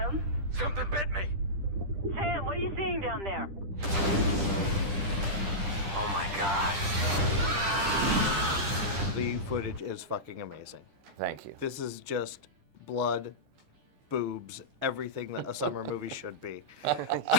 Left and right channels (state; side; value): late; left; 10 ms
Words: Something bit me! Sam, what are you seeing down there? Oh my god. The footage is fucking amazing. Thank you. This is just blood, boobs, everything that a summer movie should be.